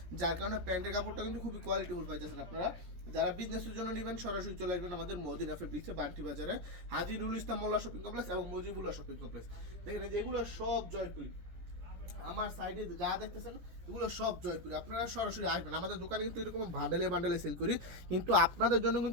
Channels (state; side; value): late; left; 17 ms